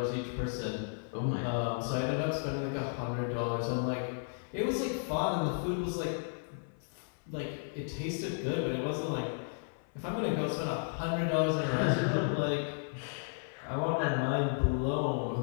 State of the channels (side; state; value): right; silent; 55 dB below the other